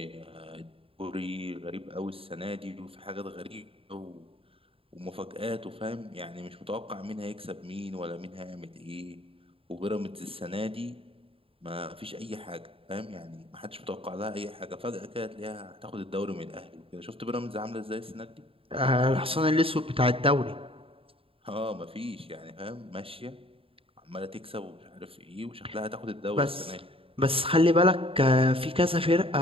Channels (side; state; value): left; late; 0.27 ms